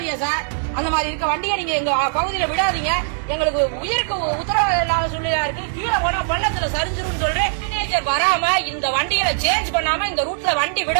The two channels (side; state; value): left; silent; 63 dB below the other